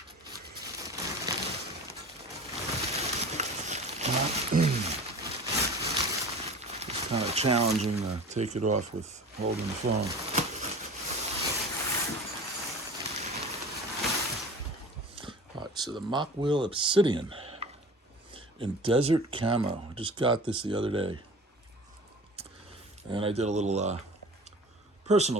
It's kind of challenging to take it off with holding the phone. All right, so the Mokwheel Obsidian in desert camo. I just got this the other day. And I did a little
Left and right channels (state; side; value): normal; both; correlation 0.38